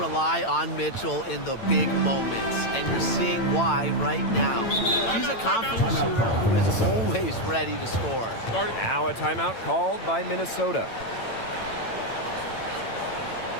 on Mitchell in the big moments, and you're seeing why right now. She's a confident shooter who is always ready to score. Now a timeout called by Minnesota.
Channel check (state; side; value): late; right; 8.9 ms